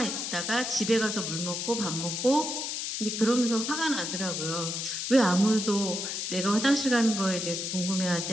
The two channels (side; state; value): left; noise; hiss, 3 dB below the sound